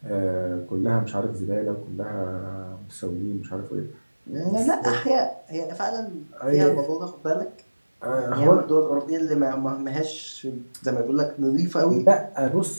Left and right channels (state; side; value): inverted; both; correlation -1.00